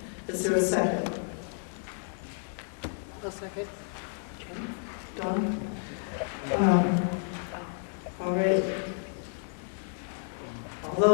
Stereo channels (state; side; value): silent; right; 57 dB below the other